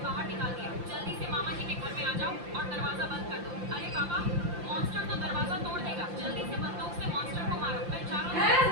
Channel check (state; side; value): late; left; 5.8 ms